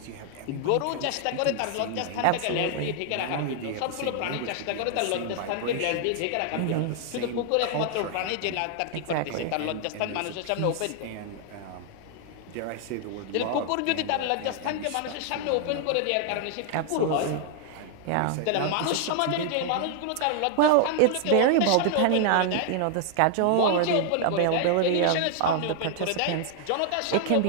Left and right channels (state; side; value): different; both; correlation 0.00